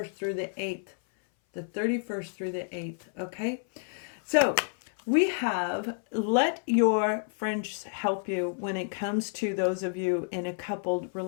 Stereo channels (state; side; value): silent; right; 58 dB below the other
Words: through the 8th. The 31st through the 8th, okay? So we have let your friends help you when it comes to those of you in a coupled